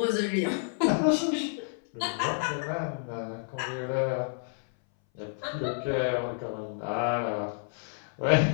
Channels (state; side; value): silent; right; 58 dB below the other